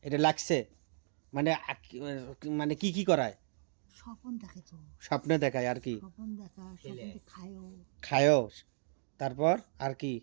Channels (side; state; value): left; silent; digital silence